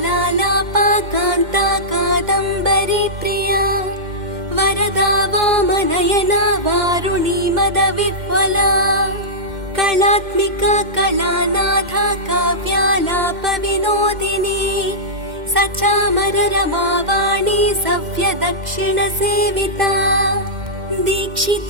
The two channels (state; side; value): late; left; 2.1 ms